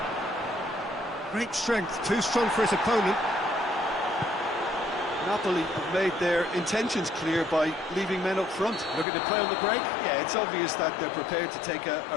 Great strength, too strong for his opponent. Napoli have made their intentions clear by leaving men up front. Looking to play on the break. Yeah, it's obvious that they're prepared to take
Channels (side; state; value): right; drops out; at 9.1 s